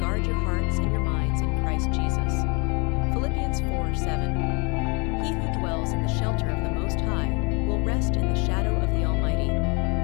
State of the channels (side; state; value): right; quieter; 31.3 dB